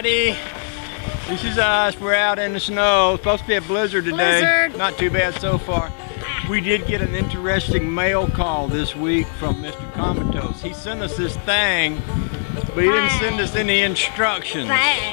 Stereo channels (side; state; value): right; silent; 66 dB below the other